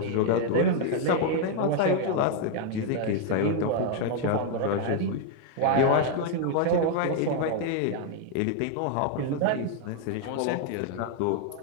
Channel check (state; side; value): different; both; correlation 0.00